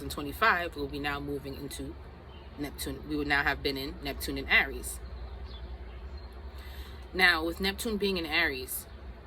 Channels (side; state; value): both; identical; correlation 1.00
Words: we'll be now moving into Neptune. We would now have been in Neptune in Aries. Now, with Neptune being in Aries,